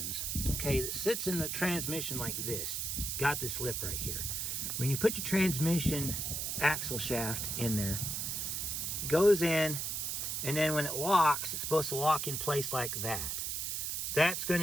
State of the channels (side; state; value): right; noise; hiss, 2 dB below the sound